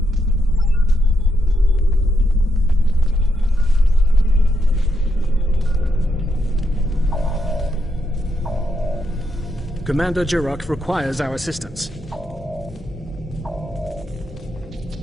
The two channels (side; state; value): both; normal; correlation 0.80